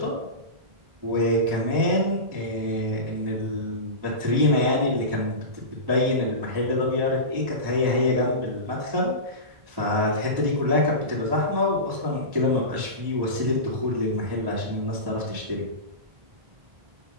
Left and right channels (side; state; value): left; late; 1.1 ms